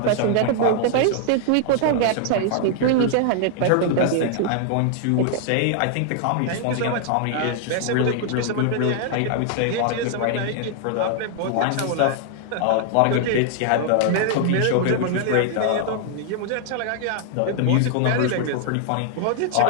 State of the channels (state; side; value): different; both; correlation 0.00